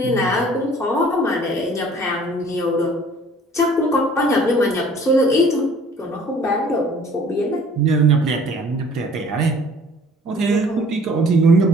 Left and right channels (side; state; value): both; normal; correlation 0.53